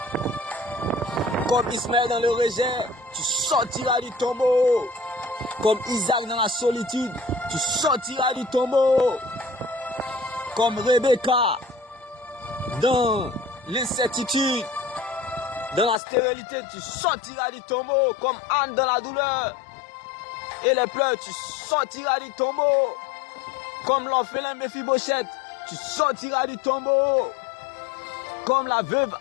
Comme Ismaël dans le rejet, tu sortiras du tombeau. Comme Isaac dans la solitude, tu sortiras du tombeau. Comme Rebecca dans l'incertitude, dans la stérilité, tu sortiras du tombeau. Comme Anne dans la douleur et les pleurs, tu sortiras du tombeau. Comme l'orphelin Mephibosheth, tu sortiras du tombeau. Comme la veuve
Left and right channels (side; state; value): right; drops out; at 16.0 s